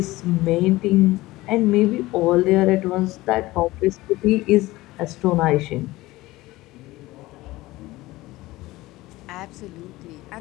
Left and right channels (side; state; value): right; quieter; 18.7 dB